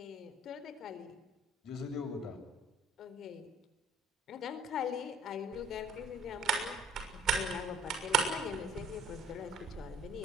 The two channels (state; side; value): normal; both; correlation 0.56